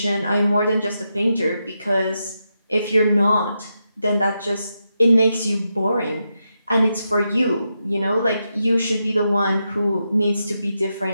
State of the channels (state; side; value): inverted; both; correlation -0.86